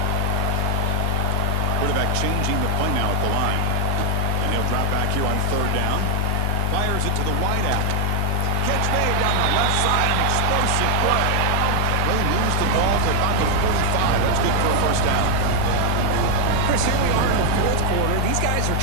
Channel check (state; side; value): different; both; correlation 0.00